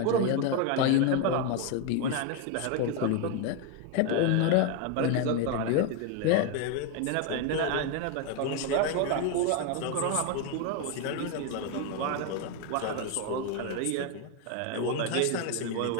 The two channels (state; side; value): different; both; correlation 0.01